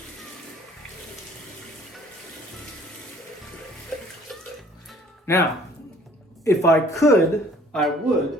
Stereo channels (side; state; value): both; normal; correlation 0.55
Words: Now, if I could, I